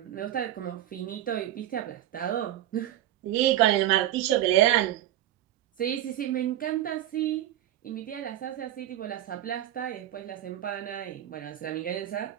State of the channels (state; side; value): quieter; left; 12.9 dB